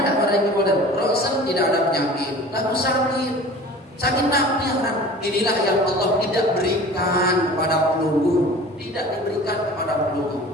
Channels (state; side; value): normal; both; correlation 0.42